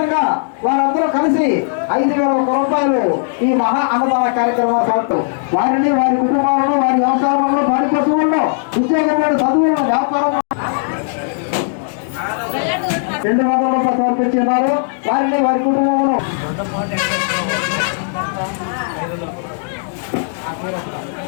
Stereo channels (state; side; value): silent; right; digital silence